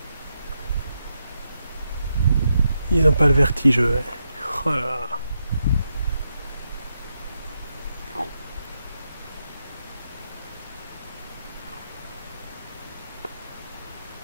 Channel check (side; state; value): both; inverted; correlation -0.83